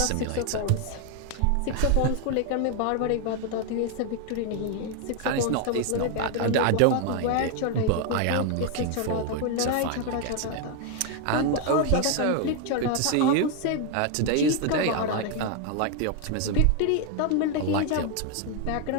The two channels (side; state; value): both; different; correlation 0.01